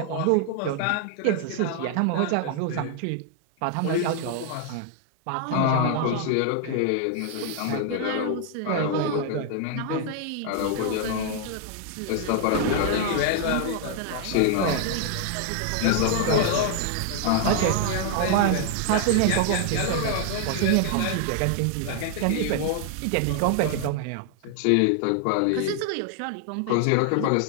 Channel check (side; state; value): both; different; correlation 0.00